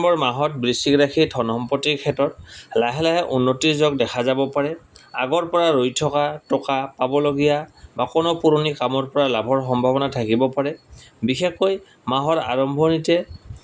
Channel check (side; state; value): both; identical; correlation 1.00